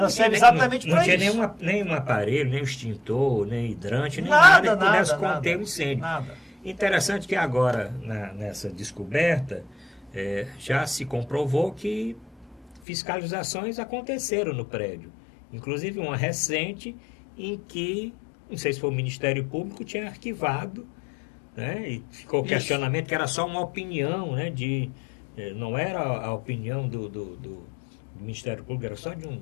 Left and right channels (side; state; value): right; drops out; at 12.8 s